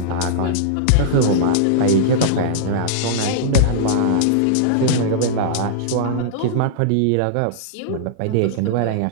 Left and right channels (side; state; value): both; different; correlation -0.02